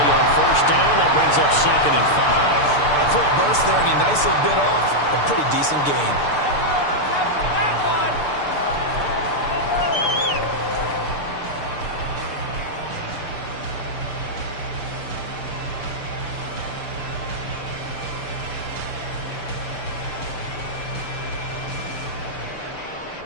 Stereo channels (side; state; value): right; late; 6.8 ms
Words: on 1st down. That brings up 2nd and 5. A quick burst there, and he nicely bit off a pretty decent gain.